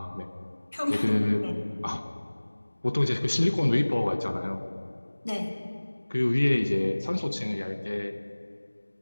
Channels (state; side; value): inverted; both; correlation -1.00